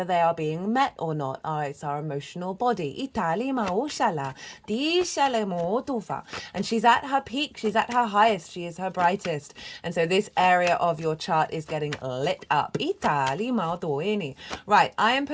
they are being met or not. It's our emotional body. And she's at her peak, she's at her highest, she is her brightest. And so this area of your chart is getting lit up. Right, I am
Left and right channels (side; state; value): both; identical; correlation 1.00